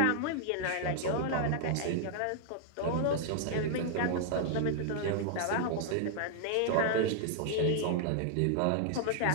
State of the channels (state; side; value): different; both; correlation -0.01